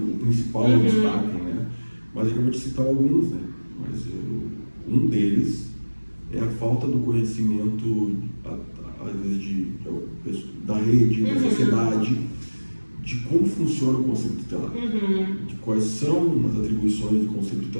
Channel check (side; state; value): both; inverted; correlation -1.00